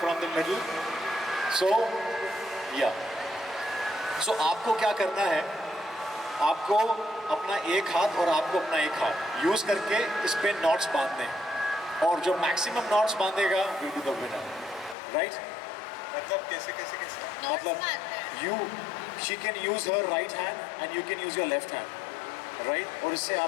from the middle. So yeah. So आपको क्या करना है? आपको अपना एक हाथ और आपको अपना एक हाथ यूज़ करके इस पे नॉट्स बांधने हैं और जो मैक्सिमम नॉट्स बांधेगा will be the winner, right? मतलब कैसे कैसे कैसे? मतलब you she can use her right hand and you can use your left hand, right? और इससे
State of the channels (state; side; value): drops out; right; at 15.0 s